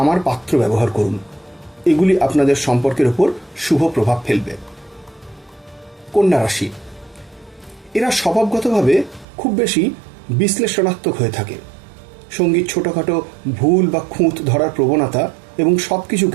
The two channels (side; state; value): left; drops out; at 9.2 s